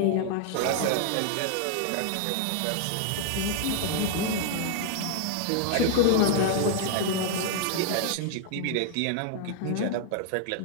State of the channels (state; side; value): different; both; correlation 0.00